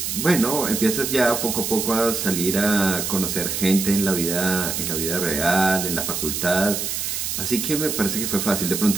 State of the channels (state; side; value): noise; right; hiss, 2 dB below the sound